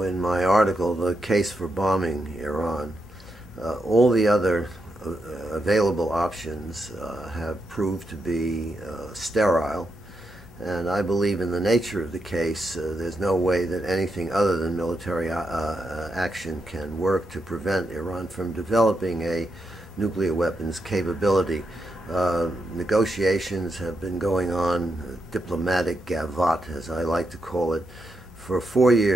in my article, The Case for Bombing Iran, all the other available options have proved to be sterile, and I believe in the nature of the case. There's no way that anything other than military action can work to prevent Iran from developing a nuclear weapons capability. Negotiations have been going on, diplomatic gavotte, as I like to call it, for 4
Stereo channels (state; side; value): normal; both; correlation 0.84